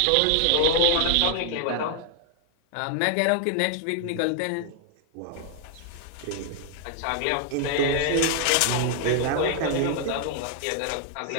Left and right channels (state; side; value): different; both; correlation 0.00